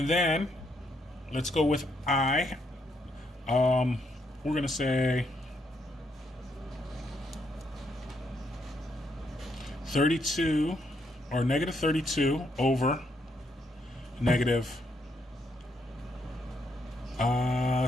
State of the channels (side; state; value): both; normal; correlation 0.75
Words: then let's go with I. We're going to say 32 or negative 32 over negative